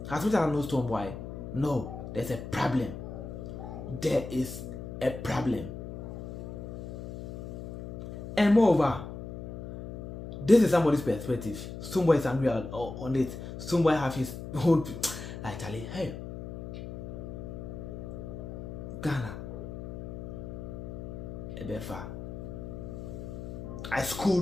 As much as I know Stonebwoy, no, there's a problem. There is a problem. And moreover, this is somebody's perspective. Stonebwoy is angry on it. Stonebwoy have his own... Charlie, hey, Ghana, Ebefa. I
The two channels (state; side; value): noise; left; hum, 9 dB below the sound